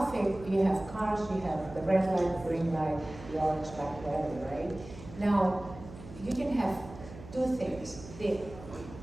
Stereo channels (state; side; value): noise; right; hum, 15 dB below the sound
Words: you have cars, you have the red light, green light, the orange light, whatever, right? Now, you can have 2 things.